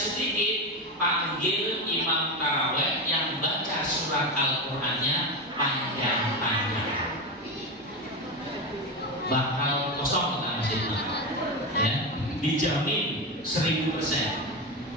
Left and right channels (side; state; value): both; normal; correlation 0.17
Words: panggil imam taraweh yang baca surat Al-Qur'annya panjang-panjang. Bakal kosong kita masjidnya, ya, dijamin 1000%.